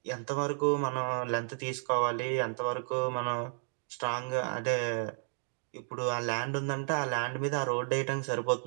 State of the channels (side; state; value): left; silent; 56 dB below the other